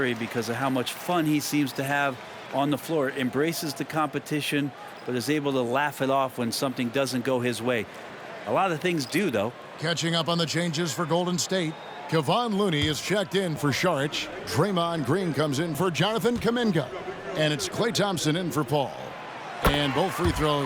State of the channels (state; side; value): identical; both; correlation 1.00